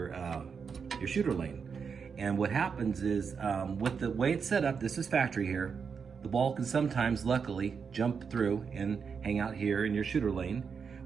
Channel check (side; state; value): left; quieter; 6.1 dB